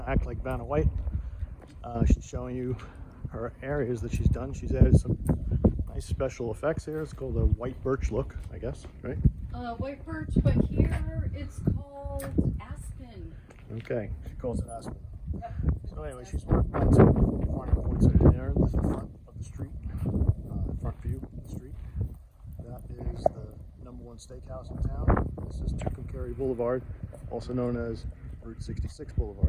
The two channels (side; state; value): both; identical; correlation 1.00